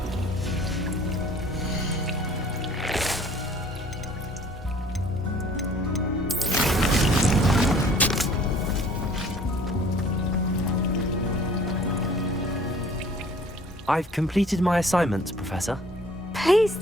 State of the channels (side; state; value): both; normal; correlation 0.53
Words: I've completed my assignments, Professor. Pleased